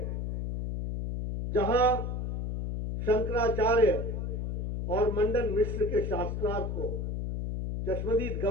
जहां शंकराचार्य और मंडन मिश्र के शास्त्रार्थ को चश्मदीद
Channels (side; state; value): left; noise; hum, 3 dB below the sound